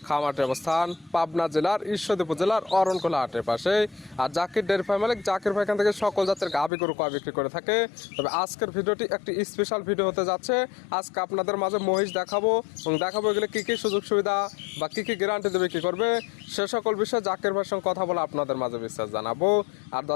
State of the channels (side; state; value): right; drops out; at 6.7 s